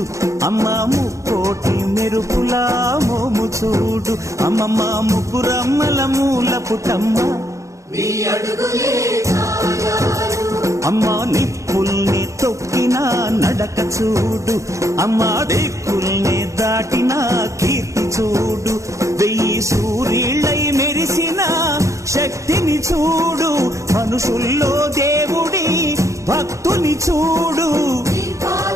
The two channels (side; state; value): left; late; 0.15 ms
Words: అమ్మా ముక్కోటి మెరుపులా మోము చూడు, అమ్మమ్మ ముగ్గురమ్మల మూల పుటమ్మ అమ్మా నిప్పుల్ని తొక్కిన నడక చూడు, అమ్మా దిక్కుల్ని దాటిన కీర్తి చూడు, 1000 సూర్యుళ్ళై మెరిసిన శక్తిని చూడు, మనుషుల్లో దేవుడి భక్తుని చూడు.